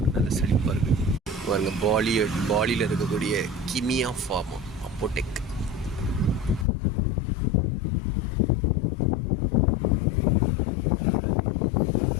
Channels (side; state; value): right; drops out; at 6.7 s